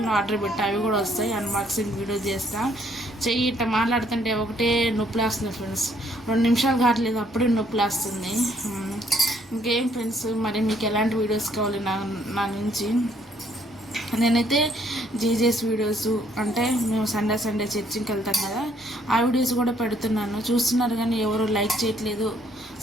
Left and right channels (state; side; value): normal; both; correlation 0.66